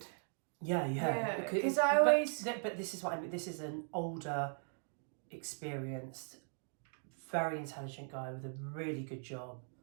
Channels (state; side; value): silent; left; 52 dB below the other